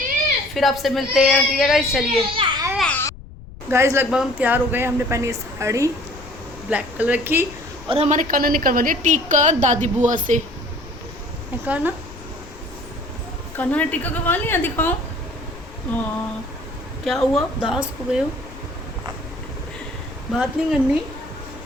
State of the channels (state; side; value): noise; left; rumble, 17 dB below the sound